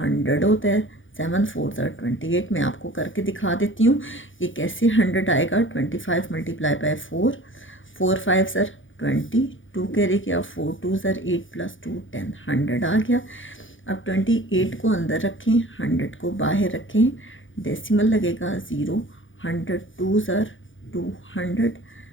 होता है, 7 4 ज़र 28। मैं आपको करके दिखा देती हूँ ये कैसे 100 आएगा। 25 मल्टीप्लाई बाय 4, 4 5 ज़र 20, 2 कैरी किया, 4 2 ज़र 8 प्लस 2 10, 100 आ गया। अब 28 को अंदर रखें, 100 को बाहर रखें, डेसिमल लगेगा 0, 100 2 ज़र 200,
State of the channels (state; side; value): late; right; 0.57 ms